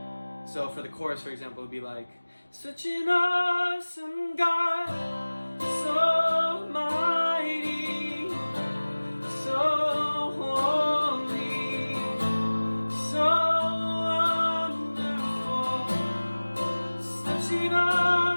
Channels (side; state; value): both; inverted; correlation -1.00